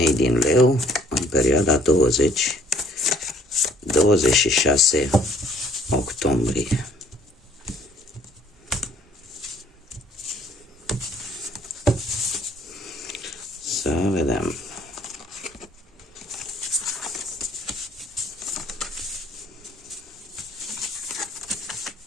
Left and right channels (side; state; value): both; normal; correlation 0.59